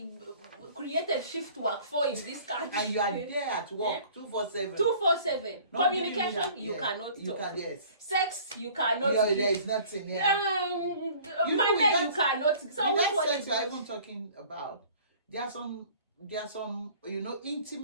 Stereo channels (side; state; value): both; inverted; correlation -0.50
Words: created shift work for in this country. And you are there at work 2/4/7. 2/4/7. Communication, you cannot talk. Yes. Sex, you cannot. There is nothing. Money, you cannot. So that sex we are even talking about, there are some